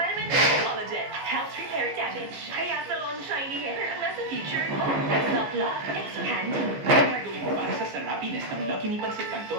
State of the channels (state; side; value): late; left; 14 ms